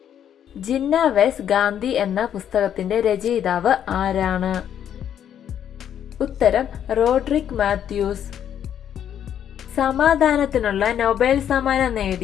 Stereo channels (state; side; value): quieter; right; 9.6 dB